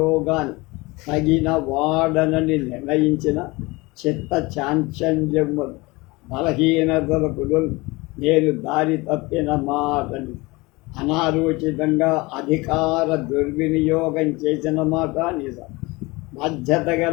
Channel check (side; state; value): right; quieter; 23.5 dB